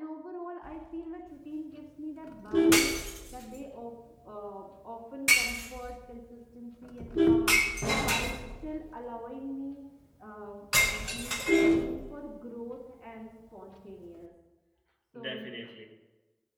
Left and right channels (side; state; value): both; identical; correlation 1.00